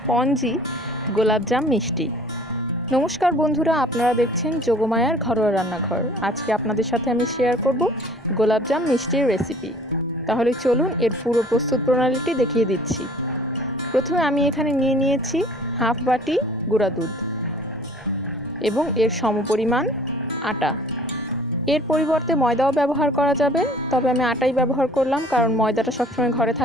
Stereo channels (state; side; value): normal; both; correlation 0.51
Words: গোলাপজাম মিষ্টি। নমস্কার বন্ধুরা, আপনারা দেখছেন যোগমায়ার ঘরোয়া রান্নাঘর। আজকে আপনাদের সাথে আমি শেয়ার করব গোলাপজাম মিষ্টির রেসিপি। তাহলে চলুন এর পুরো প্রস্তুত প্রণালীটি দেখিয়ে দিচ্ছি। প্রথমে আমি এখানে নিয়ে নিয়েছি হাফ বাটি গুঁড়া দুধ এবং এর সমপরিমাণ আটা। এর পরিবর্তে ময়দাও ব্যবহার করা যাবে, তবে আমি আটাই ব্যবহার করলাম কারণ ময়দাটা সবসময় ঘরে